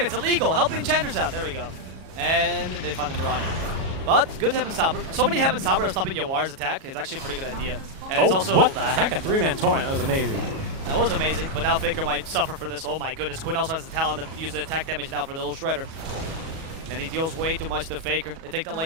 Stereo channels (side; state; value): left; late; 37 ms